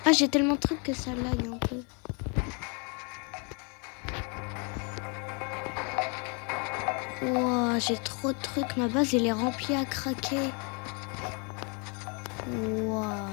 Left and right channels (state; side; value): quieter; right; 34.5 dB